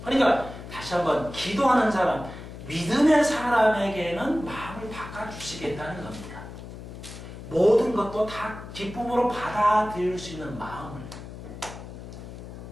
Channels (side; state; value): left; noise; hum, 12 dB below the sound